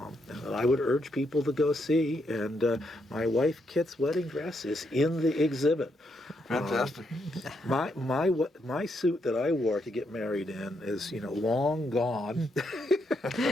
I would urge people to go see. And my wife Kit's wedding dress is in the exhibit. Fantastic. My suit that I wore to get married in is long gone,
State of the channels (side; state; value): both; normal; correlation 0.78